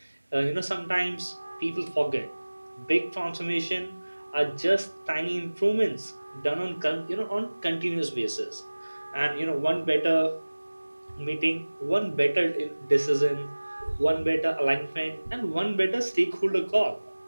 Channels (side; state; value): both; inverted; correlation -1.00